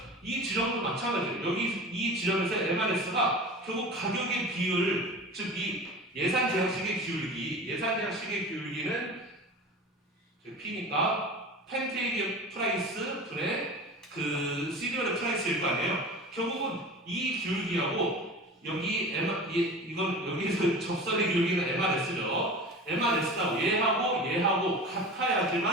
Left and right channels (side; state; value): both; normal; correlation 0.34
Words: 이 지점도 마찬가지예요. 여기 이 지점에서 MRS가 결국 가격의 비율, 즉 이 예산 제약식의 기울기는 P니까 팬케이크의 프라이스 분의 그 시리얼의 프라이스일 거 아니에요. 결국은 이 기울기하고 여기 이건 여기서 접선의 기울기는 MRS죠. MRS가 얘하고